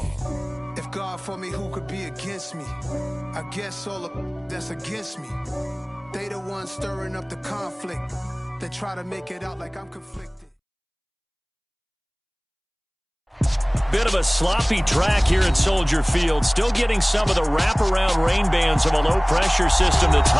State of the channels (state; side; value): identical; both; correlation 1.00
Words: If God for me, who could be against me? I guess all the that's against me. They the ones stirring up the conflict. They try to make it out like I'm conflicted. Bit of a sloppy track here at Soldier Field. Still getting some of the wraparound rain bands of a low-pressure system that's